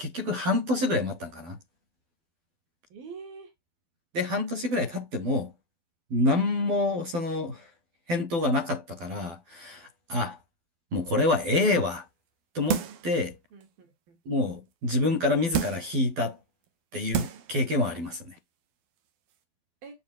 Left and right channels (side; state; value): left; late; 12 ms